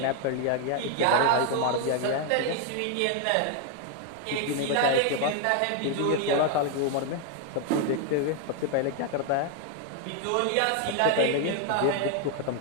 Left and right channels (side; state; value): both; different; correlation 0.00